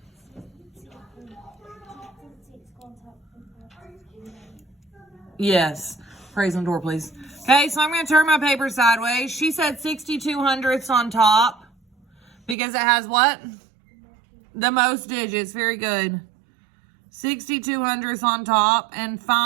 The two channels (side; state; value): left; drops out; at 12.6 s